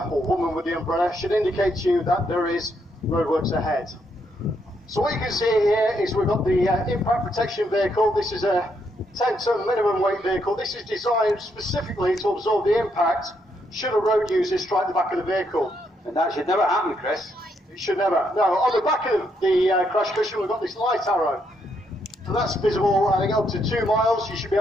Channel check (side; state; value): both; normal; correlation 0.76